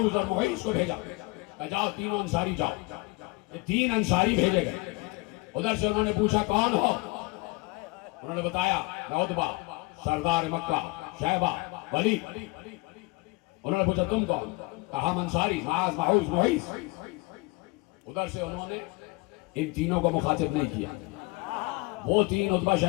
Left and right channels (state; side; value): quieter; right; 25.7 dB